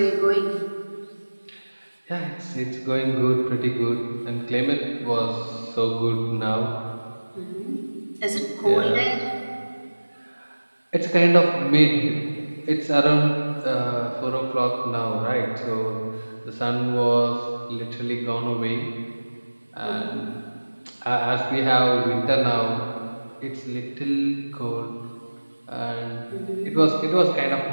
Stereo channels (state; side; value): inverted; both; correlation -1.00